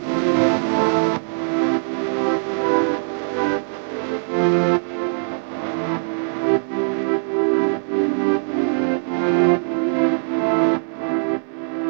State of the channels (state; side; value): silent; left; digital silence